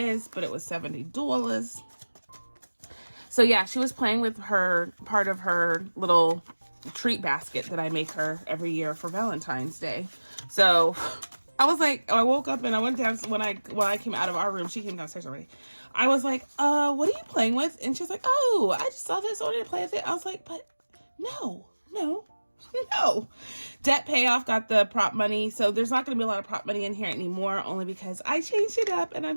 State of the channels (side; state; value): both; inverted; correlation -1.00